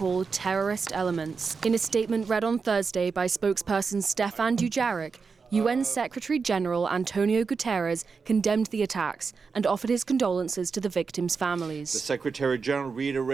terrorist elements. In a statement read on Thursday by spokesperson Stefan Dujarric, UN Secretary-General Antonio Guterres condemned the attacks and offered his condolences to the victims' families. The Secretary-General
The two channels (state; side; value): quieter; left; 5.1 dB